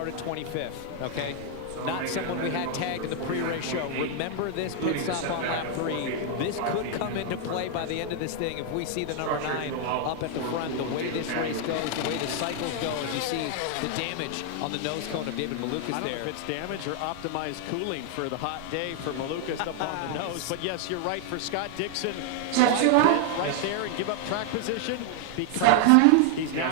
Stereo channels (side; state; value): both; different; correlation 0.00